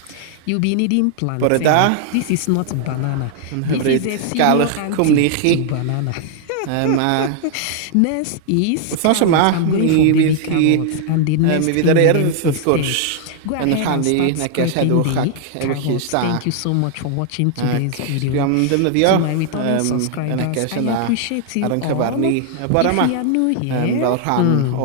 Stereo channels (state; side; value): different; both; correlation 0.00